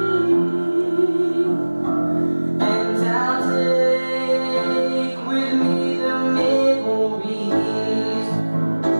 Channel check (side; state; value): both; inverted; correlation -1.00